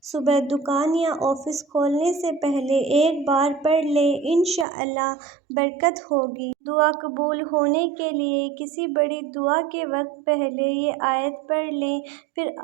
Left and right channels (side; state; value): left; drops out; at 4.7 s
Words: صبح دکان یا آفس کھولنے سے پہلے 1 بار پڑھ لیں، انشاءاللہ برکت ہوگی۔ دعا قبول ہونے کے لیے کسی بڑی دعا کے وقت پہلے یہ آیت پڑھ لیں، پھر